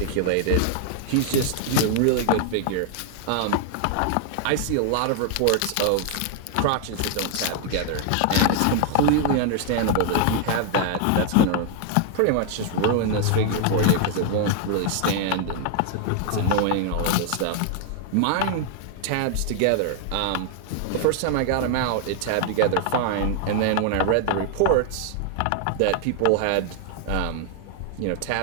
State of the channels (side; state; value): both; different; correlation 0.00